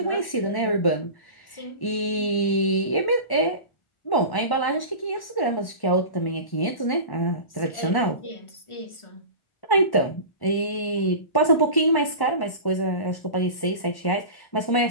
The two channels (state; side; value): late; right; 1.1 ms